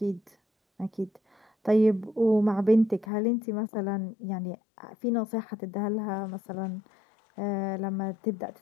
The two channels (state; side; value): drops out; right; at 3.1 s